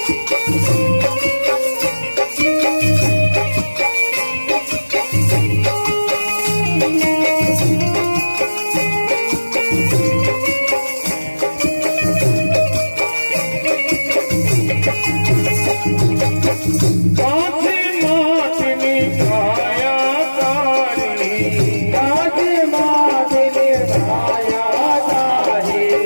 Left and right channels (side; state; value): both; inverted; correlation -1.00